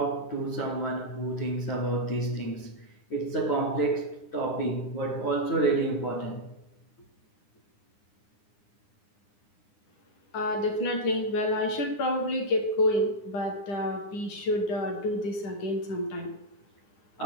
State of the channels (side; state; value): right; late; 9.8 ms